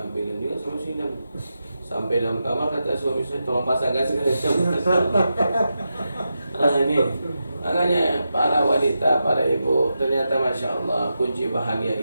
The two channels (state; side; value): inverted; both; correlation -0.88